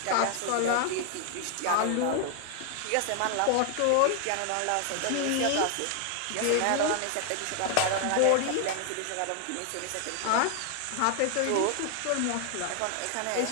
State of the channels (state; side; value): different; both; correlation 0.00